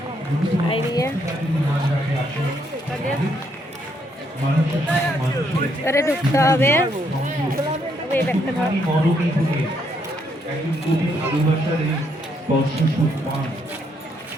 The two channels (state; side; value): normal; both; correlation 0.74